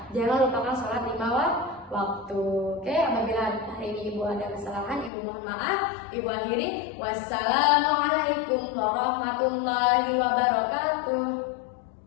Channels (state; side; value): drops out; right; at 5.1 s